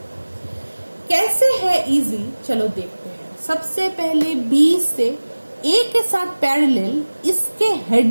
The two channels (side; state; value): both; inverted; correlation -1.00